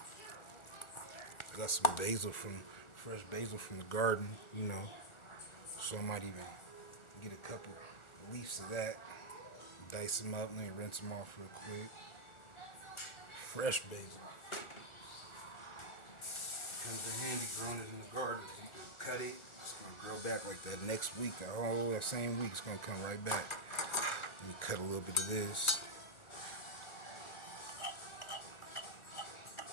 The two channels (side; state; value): right; late; 1.4 ms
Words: Got some fresh basil from the garden, So I might even get a couple leaves of that, dice them up, and then rinse them off real quick. Fresh basil. Comes in handy growing it in the garden. You can cut it, it's gonna grow back like that next week. That same week, it's gonna come right back. Let me cut a little bit of this.